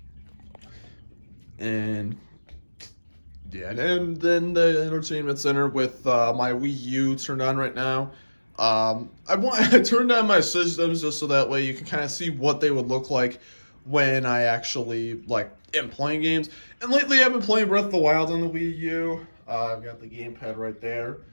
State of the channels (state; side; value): inverted; both; correlation -1.00